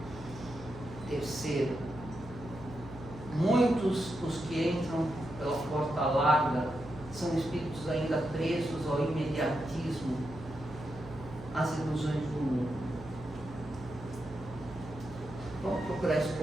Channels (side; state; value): right; noise; hum, 15 dB below the sound